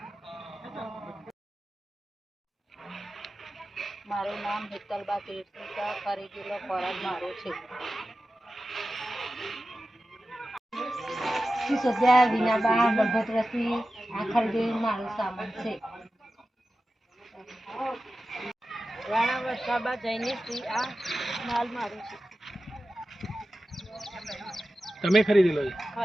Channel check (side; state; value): both; normal; correlation 0.94